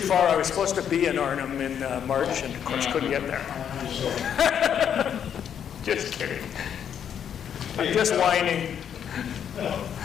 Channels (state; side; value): quieter; right; 8.6 dB